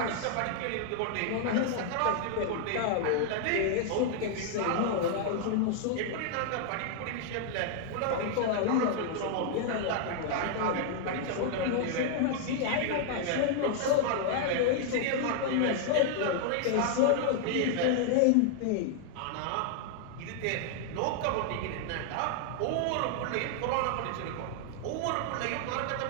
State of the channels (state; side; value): different; both; correlation -0.01